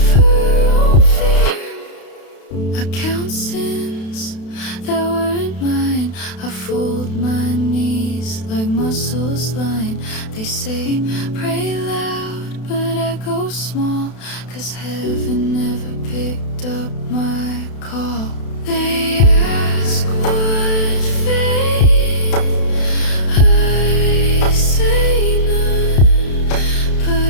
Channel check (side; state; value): right; late; 32 ms